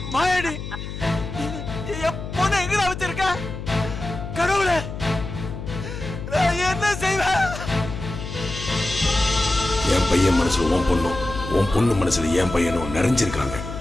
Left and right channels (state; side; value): noise; left; hum, 8 dB below the sound